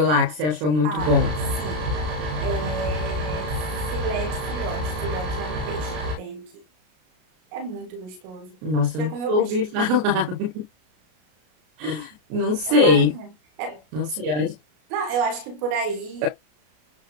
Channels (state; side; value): late; left; 33 ms